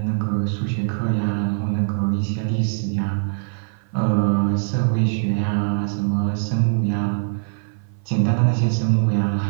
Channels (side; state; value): left; silent; 55 dB below the other